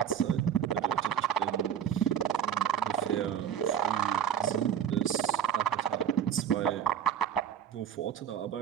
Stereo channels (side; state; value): left; quieter; 8.7 dB